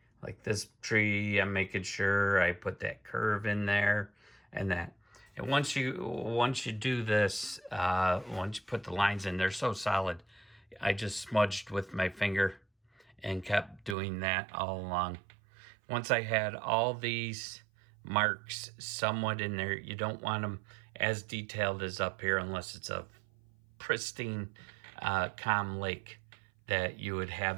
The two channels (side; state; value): left; drops out; at 14.0 s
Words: like this tree, I'm making sure I put that curve in there and that. And once you do this, once you put the lines in, they're so solid. I just smudged with my finger and kept doing that all along. Once I had all these marks somewhat in there, you don't want them as detailed as up here unless it's a pristine, calm lake that you would